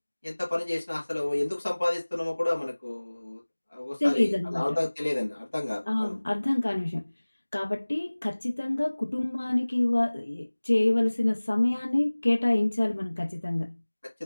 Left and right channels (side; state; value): both; inverted; correlation -1.00